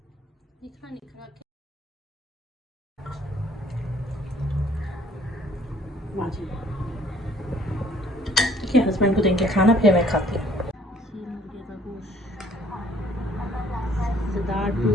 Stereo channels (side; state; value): both; normal; correlation 0.60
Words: हस्बैंड को देंगे खाना, फिर मैं खाती हूँ। मुर्गे का गोश्त